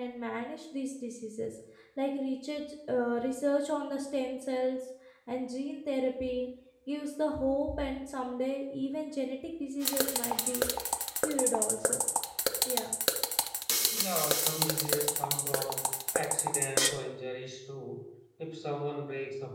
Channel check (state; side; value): identical; both; correlation 1.00